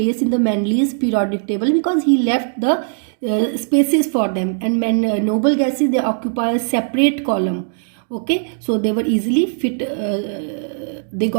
in the Mendeleev's periodic table because he left the spaces for them, and noble gases, they occupy a separate column. Okay, so they were easily fit, they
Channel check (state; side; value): silent; left; digital silence